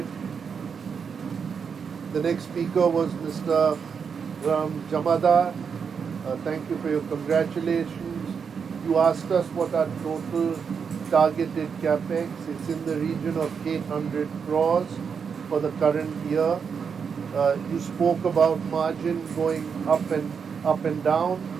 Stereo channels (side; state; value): left; quieter; 6.4 dB